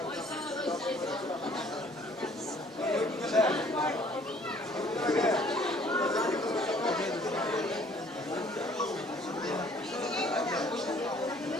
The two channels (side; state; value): both; normal; correlation 0.57